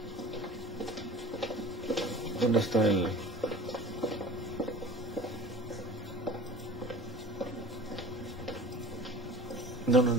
¿dónde está el...? No,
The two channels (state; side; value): normal; both; correlation 0.41